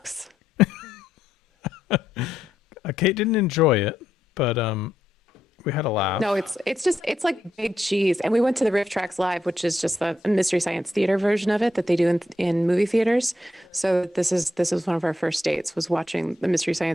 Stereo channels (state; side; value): normal; both; correlation 0.80